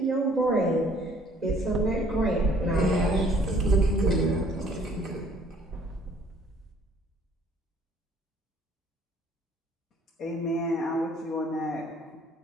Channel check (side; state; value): both; normal; correlation 0.59